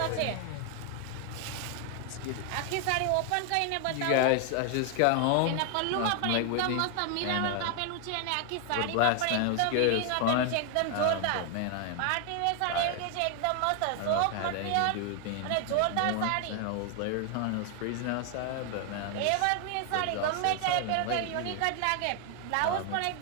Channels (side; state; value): both; different; correlation 0.00